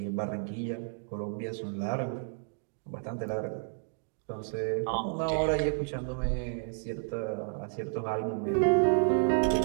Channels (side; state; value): left; silent; digital silence